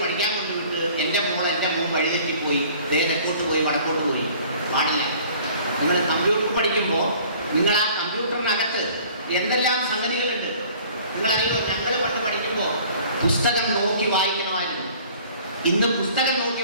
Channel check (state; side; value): inverted; both; correlation -0.51